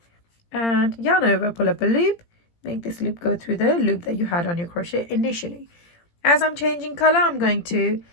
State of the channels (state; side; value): late; right; 17 ms